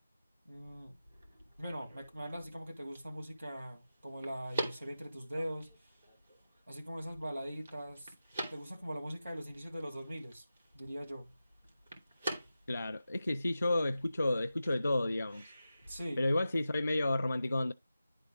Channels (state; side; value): inverted; both; correlation -0.93